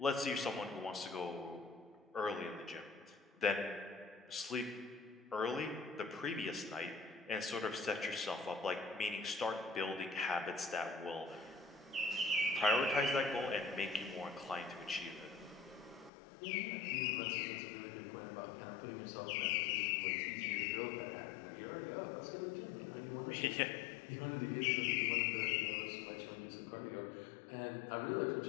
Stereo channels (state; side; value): drops out; right; at 16.1 s